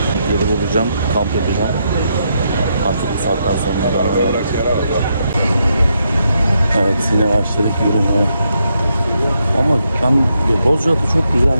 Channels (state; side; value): inverted; both; correlation -0.80